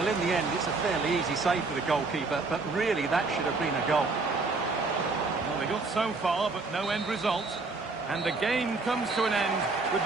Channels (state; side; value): quieter; left; 3.8 dB